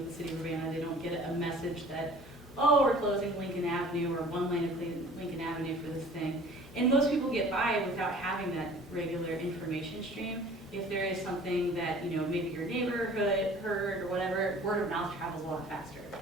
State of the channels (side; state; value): both; normal; correlation 0.48